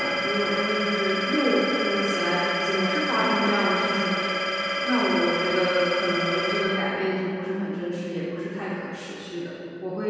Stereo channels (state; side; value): identical; both; correlation 1.00